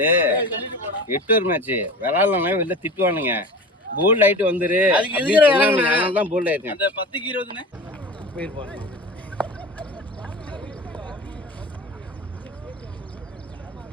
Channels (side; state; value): both; normal; correlation 0.34